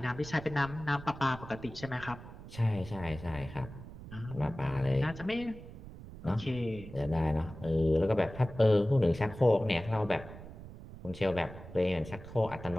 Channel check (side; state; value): right; noise; rumble, 14 dB below the sound